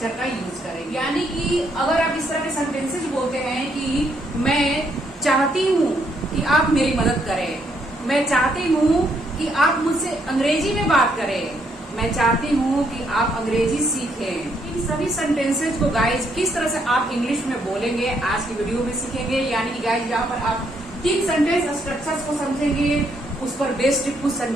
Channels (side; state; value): both; normal; correlation 0.73